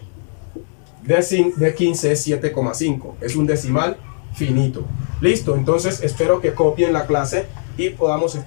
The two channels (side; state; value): right; silent; digital silence